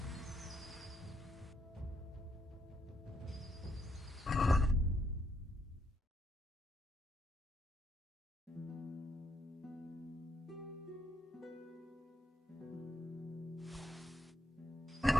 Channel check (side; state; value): both; normal; correlation 0.77